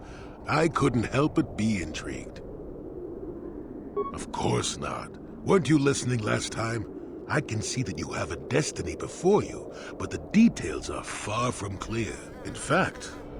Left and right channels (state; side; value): identical; both; correlation 1.00